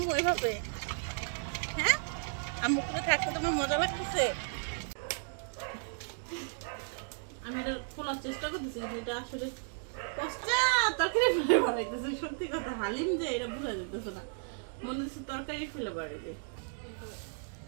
এইভাবে? হ্যাঁ আম্মু কুলে থাকতে তোমার মজা লাগতেছে? আমি এটা খোলার চেষ্টা করতেছি, এটা আসলে তরকারি ফেলে বাড়াইতেছে। সত্যি কথা, হালিম যে এটা বোঝা যেতেছে না, মনে হচ্ছে তরকারি ফেলে বাড়াইবে।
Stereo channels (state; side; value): silent; left; digital silence